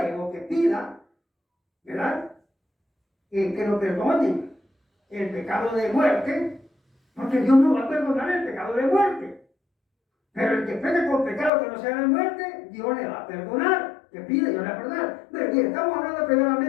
o que pida, ¿verdad? Que lo perdonen el pecado de muerte, porque Dios no va a perdonar el pecado de muerte. Pero el que peca con pecado que no sea de muerte, Dios le va a perdonar, que pide, Dios le va a perdonar. Pero bien, estamos hablando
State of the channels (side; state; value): right; drops out; at 11.5 s